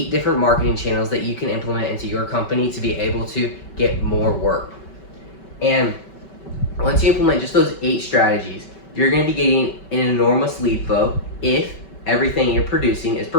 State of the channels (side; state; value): right; late; 5.2 ms